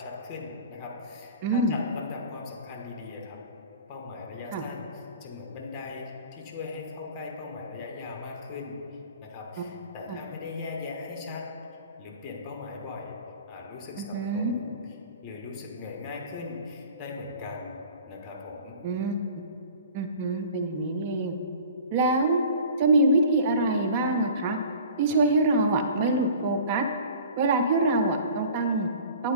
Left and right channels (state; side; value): inverted; both; correlation -0.44